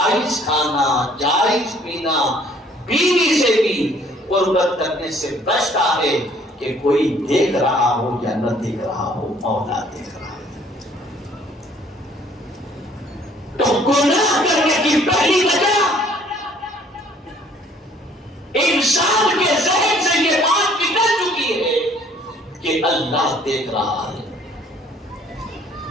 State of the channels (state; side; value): normal; both; correlation 0.58